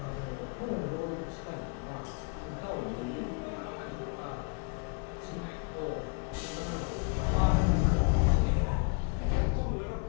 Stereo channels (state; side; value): quieter; right; 36.2 dB